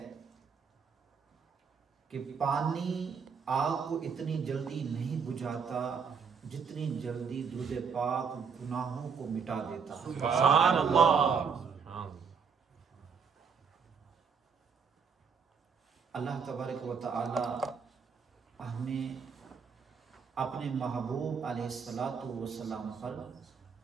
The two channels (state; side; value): quieter; left; 6.1 dB